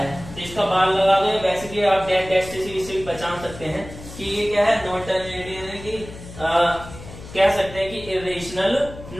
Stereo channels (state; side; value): noise; left; hum, 15 dB below the sound